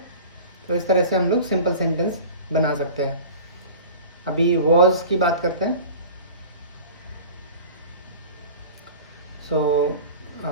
तो इस तरह से हम लोग सिंपल सेंटेंस बना सकते हैं। अभी वॉज की बात करते हैं। सो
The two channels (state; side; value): inverted; both; correlation -0.39